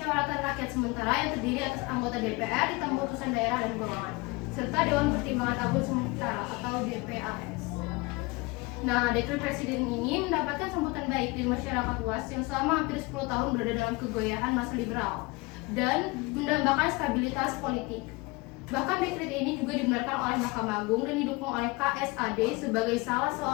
Rakyat sementara yang terdiri atas anggota DPR, ditambah utusan daerah dan golongan, serta Dewan Pertimbangan Agung Sementara atau DPAS. Nah, dekret Presiden ini mendapatkan sambutan baik dari masyarakat luas yang selama hampir 10 tahun berada dalam kegoyahan masa liberal dan mendambakan stabilitas politik. Bahkan dekret ini juga dibenarkan oleh Mahkamah Agung dan didukung oleh KSAD sebagai salah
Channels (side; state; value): right; quieter; 25.0 dB